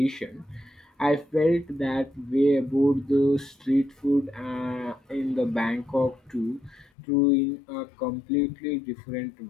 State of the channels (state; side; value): drops out; right; at 6.9 s